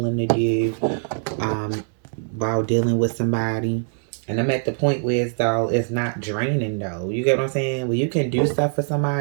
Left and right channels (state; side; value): silent; left; digital silence